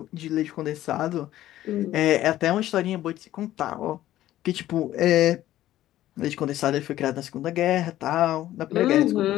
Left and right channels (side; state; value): right; quieter; 13.9 dB